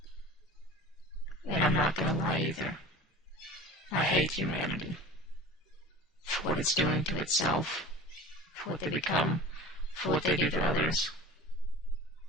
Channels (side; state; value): both; normal; correlation 0.38